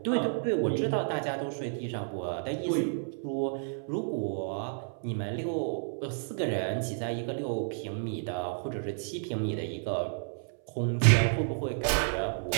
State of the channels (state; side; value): silent; left; 57 dB below the other